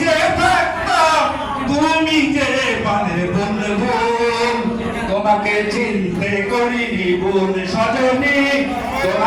থাকতাম, তুমি যে পানের বন্ধু, তোমাকে চিনতে করিনি ভুল সজনী,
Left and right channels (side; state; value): both; identical; correlation 1.00